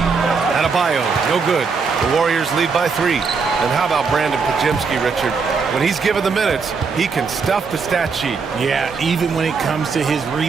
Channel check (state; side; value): quieter; left; 5.1 dB